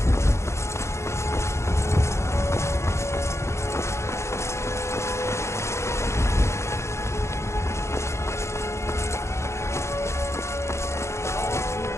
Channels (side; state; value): right; late; 0.13 ms